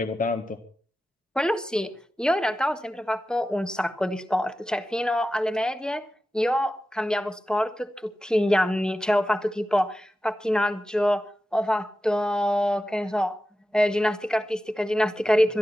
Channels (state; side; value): normal; both; correlation 0.93